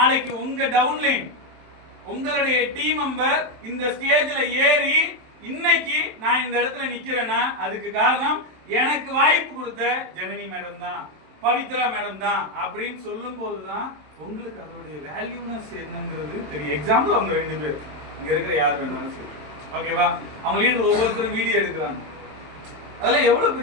உங்க டவுன்லைன் உங்களுடைய டீம் மெம்பர் இந்த ஸ்டேஜ்ல ஏறி இன்னைக்கு நான் இந்த இடத்துல நிக்கிறேன்னா அதுக்கு காரணம் எனக்கு வாய்ப்பு கொடுத்த ஜனனி மேடம் தான், பவித்ரா மேடம் தான் அப்படின்னு சொல்லும் போதுதான் உங்களுக்கு அதனுடைய வேல்யூனஸ் என்னங்கிறது தெரியும். எக்ஸாம்பிள் அவங்க 2 பேர் இங்க இருக்கிற யார் வேணாலும் சொல்லி, ஓகேவா? அவங்க லீடர் ஒவ்வொருத்தரும் வீடியோ எடுக்கிறாங்க. அதெல்லாம் எவ்வளவு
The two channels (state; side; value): late; left; 27 ms